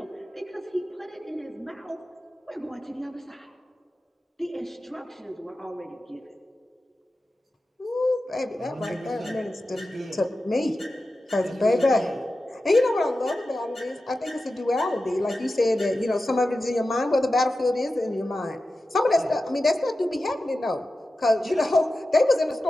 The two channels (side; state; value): both; normal; correlation 0.93